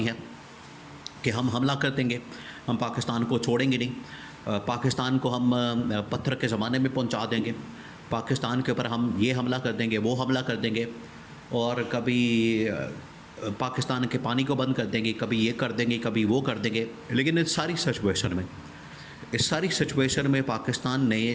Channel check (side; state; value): both; identical; correlation 1.00